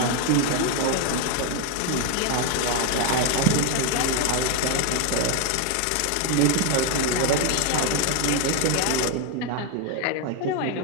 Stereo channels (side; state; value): both; different; correlation 0.01